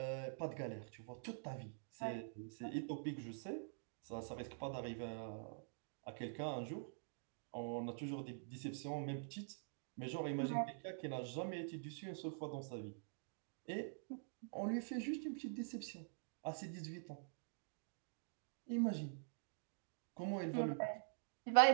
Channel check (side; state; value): left; silent; digital silence